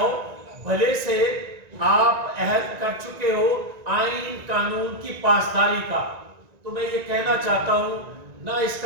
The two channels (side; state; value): left; late; 1.9 ms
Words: بھلے سے آپ عہد کر چکے ہو آئین قانون کی پاسداری کا. تو میں یہ کہنا چاہتا ہوں، نہ اس